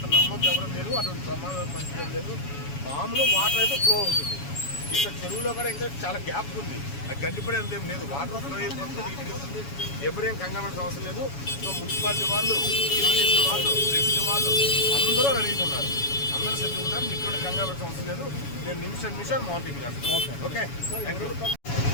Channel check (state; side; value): late; right; 7.1 ms